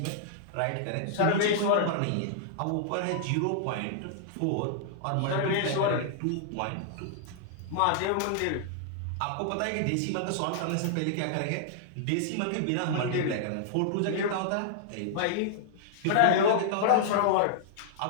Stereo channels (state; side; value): different; both; correlation -0.01